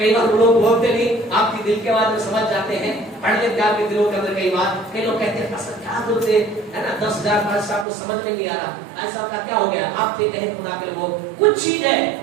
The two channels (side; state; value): left; drops out; at 7.9 s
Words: बार लोग बोलते नहीं, आपकी दिल के बात में समझ जाते हैं, पढ़ लेते आपके दिलों के अंदर। कई बार कई लोग कहते हैं पास्टर क्या जरूरत है ना, 10,000 पास्टर साहब को समझ में नहीं आ रहा, ऐसा का क्या हो गया। आपसे कहे खुदा के लोग कुछ चीज है